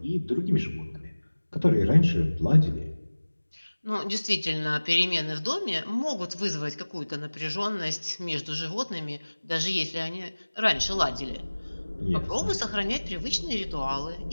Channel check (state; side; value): inverted; both; correlation -1.00